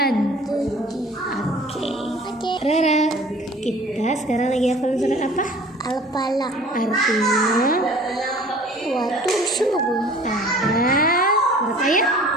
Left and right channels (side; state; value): both; normal; correlation 0.48